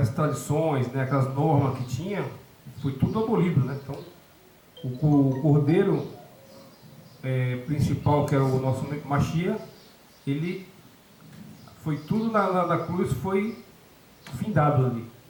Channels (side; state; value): both; identical; correlation 1.00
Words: tradições, né, aquelas normas que tinha, foi tudo abolido, né? Então, o cordeiro principal, que era o nosso Mashiach, ele foi tudo na cruz, foi findado ali.